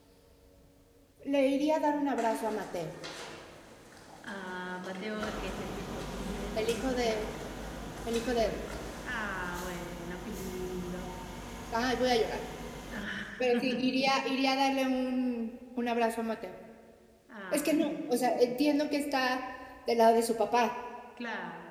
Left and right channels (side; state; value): both; identical; correlation 1.00